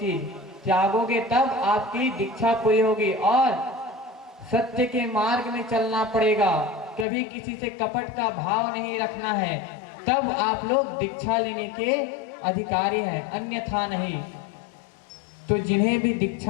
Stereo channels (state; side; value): drops out; right; at 7.1 s